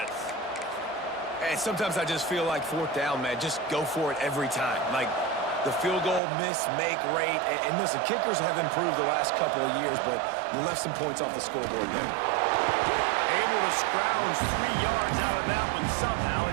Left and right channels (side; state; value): left; drops out; at 6.2 s